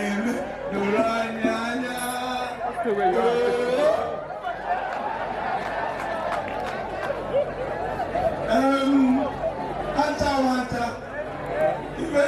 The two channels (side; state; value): both; identical; correlation 1.00